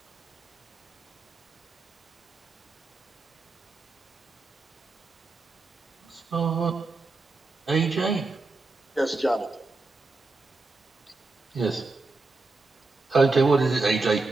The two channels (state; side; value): quieter; left; 3.5 dB